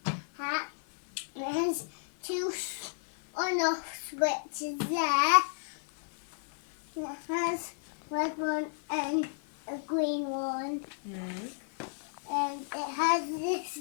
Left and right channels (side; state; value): right; silent; 56 dB below the other